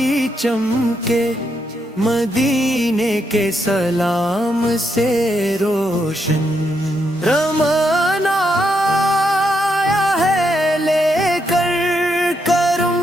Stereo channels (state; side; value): normal; both; correlation 0.79